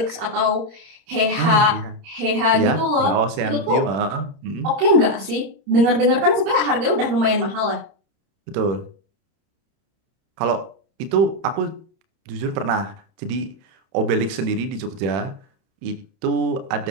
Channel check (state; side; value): late; left; 30 ms